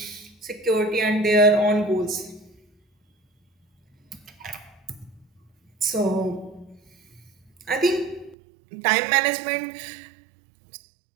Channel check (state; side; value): drops out; left; at 8.3 s